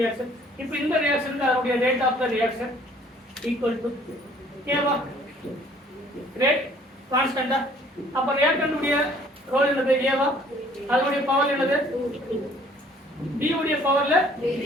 இப்போ இந்த ரியாக்ஷனுக்கு அதனுடைய rate of the reaction equal to கேவா, ரேட் கான்ஸ்டன்டா. அப்ப ரியாக்டன்ட்டுடைய ரோல் என்னது? ஏவா. அதனுடைய பவர் என்னது? B உடைய பவர்ல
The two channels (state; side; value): normal; both; correlation 0.57